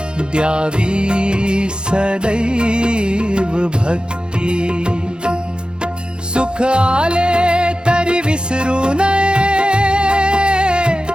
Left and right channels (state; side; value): late; left; 0.050 ms